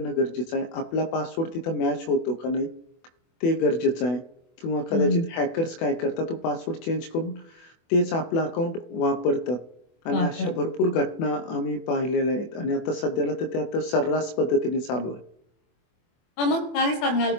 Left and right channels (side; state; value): right; late; 24 ms